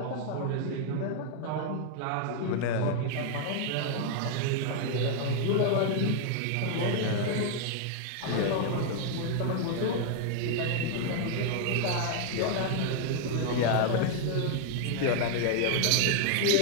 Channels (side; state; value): both; different; correlation 0.00